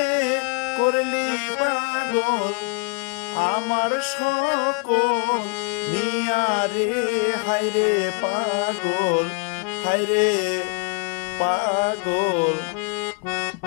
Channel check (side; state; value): right; quieter; 35.0 dB